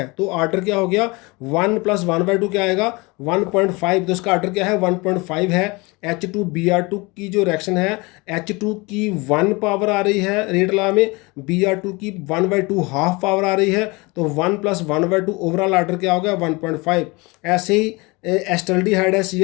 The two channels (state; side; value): quieter; right; 25.5 dB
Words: तो ऑर्डर क्या हो गया, 1 + 1/2 क्या आएगा, 1.5, तो इसका ऑर्डर क्या है, 1.5 है। H2Br2 की जो रिएक्शन है, H2 की 1 पावर आ रही है रेट लॉ में, Br2 की 1/2 हाफ पावर आ रही है, तो 1 + 1/2 ओवरऑल ऑर्डर क्या हो गया, 1.5। ऐसे ही एस्टल्डिहाइड है